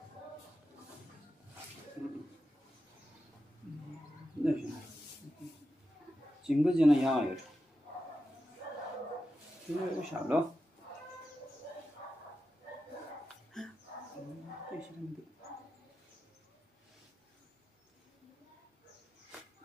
那行，经过这样养一个，这个下了。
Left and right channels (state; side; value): normal; both; correlation 0.90